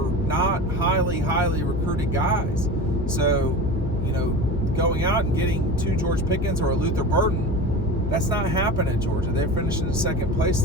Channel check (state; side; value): noise; left; hum, 5 dB below the sound